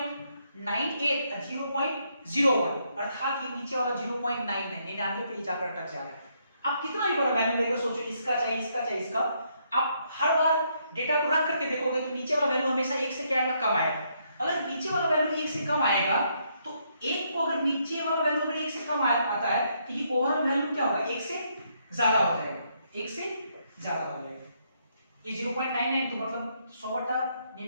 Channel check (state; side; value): inverted; both; correlation -0.74